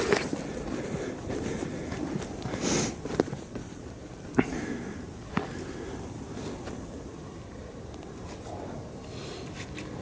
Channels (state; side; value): identical; both; correlation 1.00